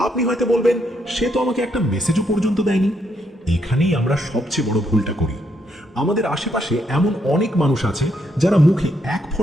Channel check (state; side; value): normal; both; correlation 0.76